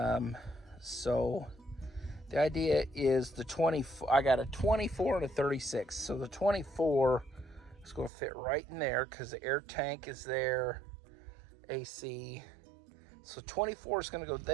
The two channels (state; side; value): drops out; left; at 8.1 s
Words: So the idea is the 24, I got a 24 and a 36. So the 24 is going to fit right in there because the air tank is there, AC. So 24 is going to go